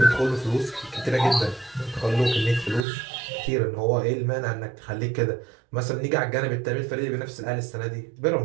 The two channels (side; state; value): left; drops out; at 2.8 s